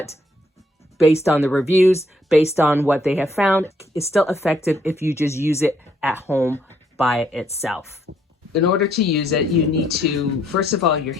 based on the reviews, based on what they have found, it's still effective if you just use it at home by itself. In order to use it, you need to, first of all, your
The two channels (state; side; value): normal; both; correlation 0.70